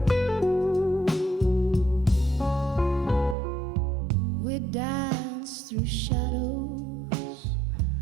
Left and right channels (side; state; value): left; drops out; at 3.4 s